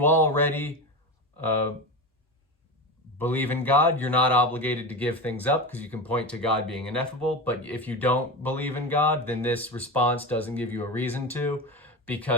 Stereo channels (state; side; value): normal; both; correlation 0.23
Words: already believe in God, you're not obligated to give things up because you can point to God being ineffable. But if you don't believe in God, then this response doesn't give you a reason to,